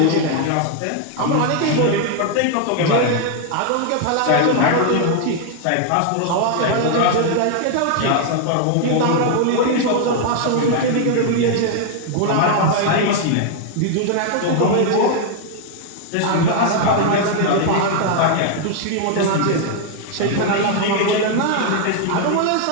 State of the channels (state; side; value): different; both; correlation 0.00